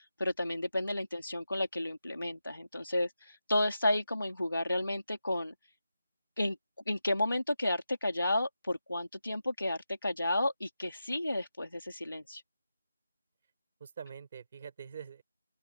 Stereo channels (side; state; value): both; inverted; correlation -0.90